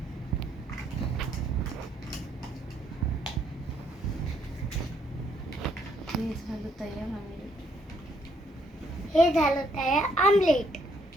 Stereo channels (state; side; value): normal; both; correlation 0.70